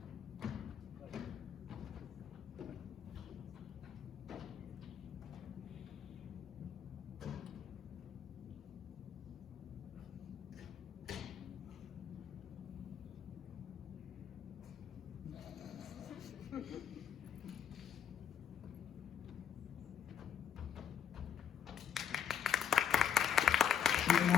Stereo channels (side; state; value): right; quieter; 8.7 dB